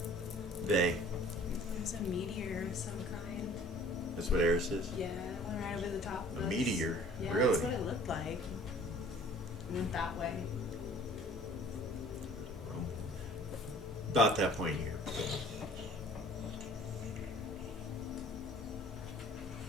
Vay. It's a meteor of some kind. That's what Eris is? Yeah, it went right over the top of A us. meteor? Yeah, Really? that's what it looked like. It went that way. About that point here.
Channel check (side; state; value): both; normal; correlation 0.51